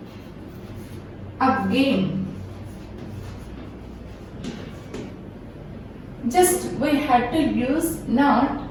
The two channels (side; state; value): both; identical; correlation 1.00